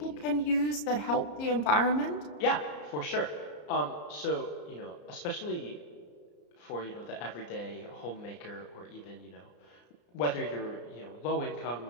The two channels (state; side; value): late; right; 34 ms